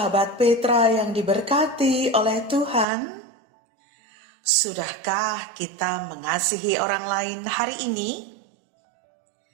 Petra yang diberkati oleh Tuhan. Sudahkah kita mengasihi orang lain hari ini?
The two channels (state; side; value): drops out; left; at 2.9 s